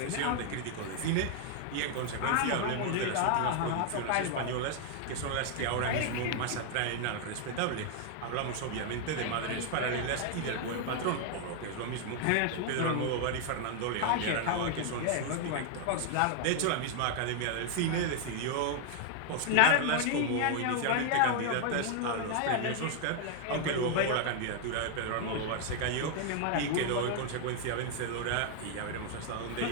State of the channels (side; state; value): both; different; correlation 0.00